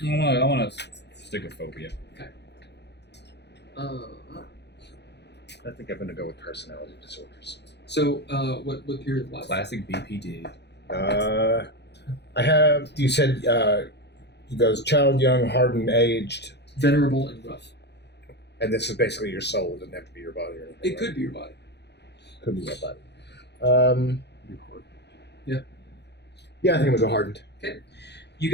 I want to stick with phobia. I think I'm going to go with personality disorders. So what period of life? Classic BPD. I have, you said, he goes child, young, hardened, aged, Venerable and rough. and this is basically your soul. It doesn't have to be your body or anything. It right? could be your body. Could be your body. Yeah. Yeah, I think I'm going to go hardened. You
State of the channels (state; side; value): late; right; 0.50 ms